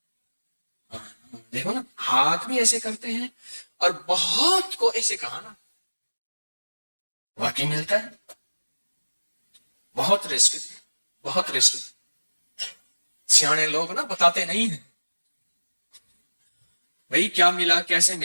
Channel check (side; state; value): both; inverted; correlation -1.00